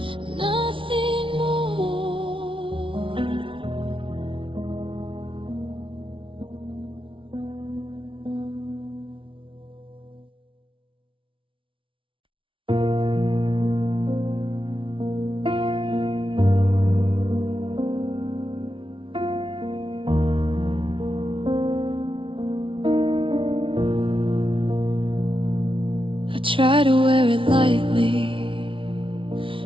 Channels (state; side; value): late; left; 0.25 ms